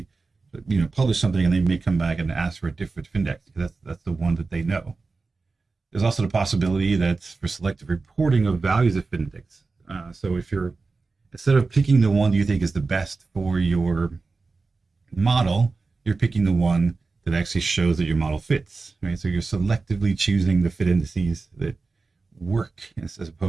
publish something and they may come back and ask for a different index because that's the one that they know. There's also the possibility that for selective reporting of values of fit index. So if you're, instead of picking the one you think is the best for your model, you're picking the one that actually shows that your model fits, right? So you're selectively choosing the fit indices that work as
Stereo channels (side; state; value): left; quieter; 4.0 dB